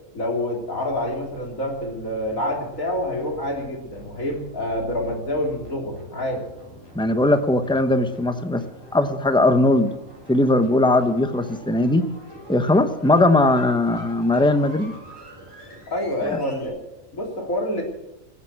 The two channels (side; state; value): both; normal; correlation 0.47